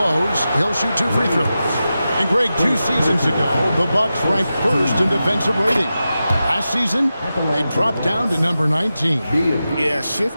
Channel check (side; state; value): both; inverted; correlation -0.92